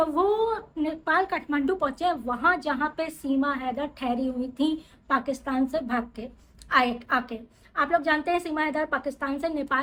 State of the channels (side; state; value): both; identical; correlation 1.00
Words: वो नेपाल काठमांडू पहुँचे, वहाँ जहाँ पे सीमा हैदर ठहरी हुई थी पाकिस्तान से भाग के आके। आप लोग जानते हैं सीमा हैदर पाकिस्तान से